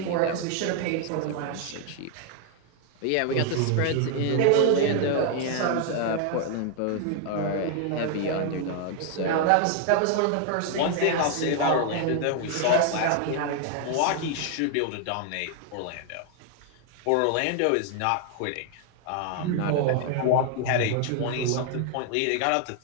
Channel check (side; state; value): both; different; correlation 0.00